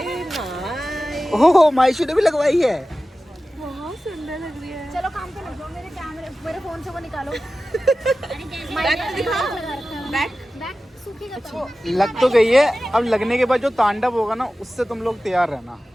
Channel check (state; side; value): normal; both; correlation 0.95